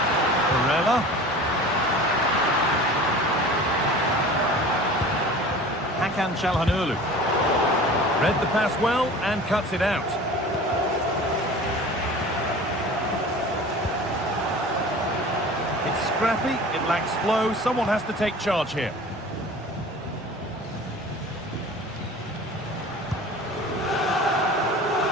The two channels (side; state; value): both; normal; correlation 0.40